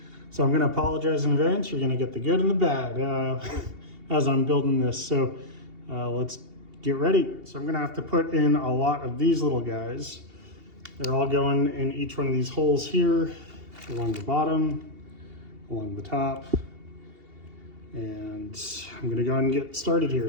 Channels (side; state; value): left; late; 2.8 ms